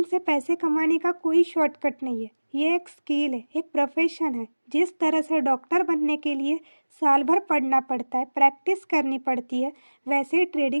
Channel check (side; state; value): both; inverted; correlation -1.00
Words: से पैसे कमाने का कोई शॉर्टकट नहीं है। ये एक स्किल है, एक प्रोफेशन है। जिस तरह से डॉक्टर बनने के लिए साल भर पढ़ना पड़ता है, प्रैक्टिस करनी पड़ती है, वैसे ही